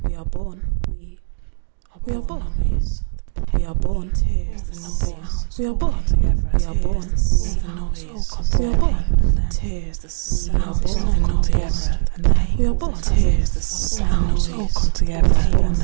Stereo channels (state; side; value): silent; left; digital silence